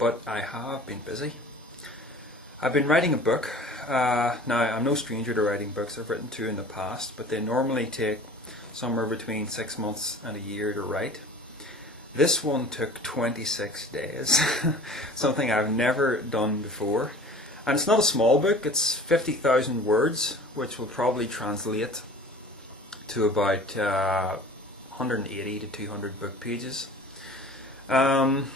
I have been busy. I've been writing a book. Now, I'm no stranger to writing books. I've written two in the past, but they normally take somewhere between 6 months and a year to write. This one took 26 days, something I've never done before. And it's not a small book, it's 50,000 words, which will probably translate to about 180 to 200 book pages.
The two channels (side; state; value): both; normal; correlation 0.43